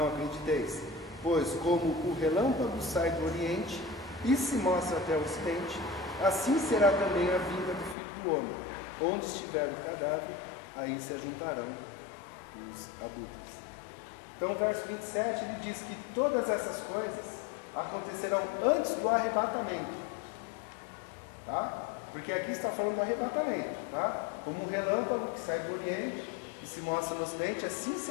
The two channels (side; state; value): right; drops out; at 8.0 s